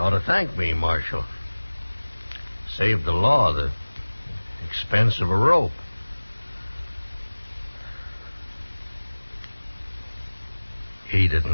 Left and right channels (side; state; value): both; inverted; correlation -1.00